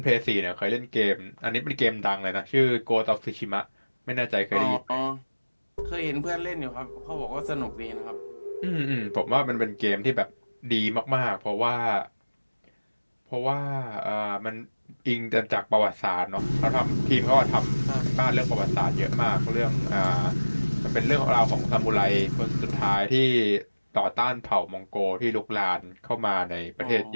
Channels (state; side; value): inverted; both; correlation -1.00